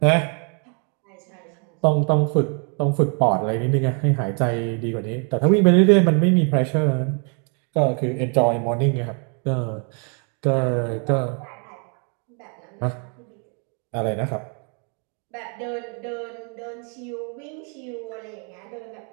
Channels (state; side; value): quieter; left; 38.9 dB